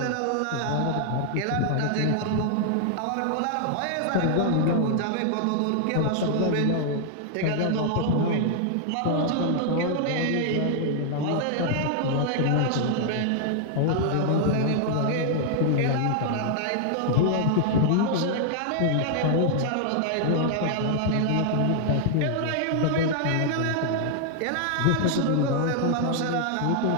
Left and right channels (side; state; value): both; different; correlation 0.00